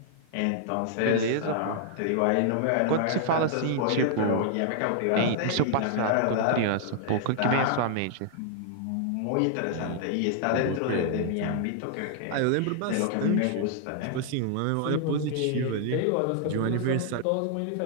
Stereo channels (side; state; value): both; different; correlation -0.01